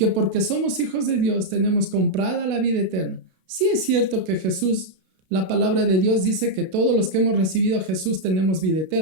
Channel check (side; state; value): left; late; 32 ms